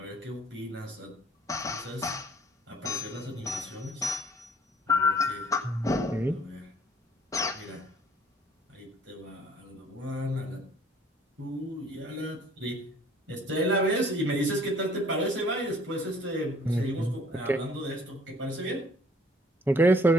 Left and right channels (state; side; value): normal; both; correlation 0.57